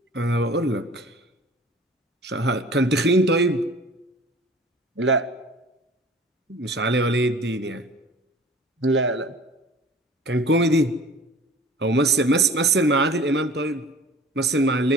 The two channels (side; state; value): both; normal; correlation 0.45